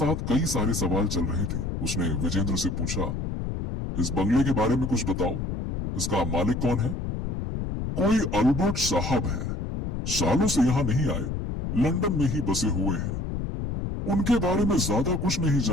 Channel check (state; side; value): noise; left; rumble, 3 dB below the sound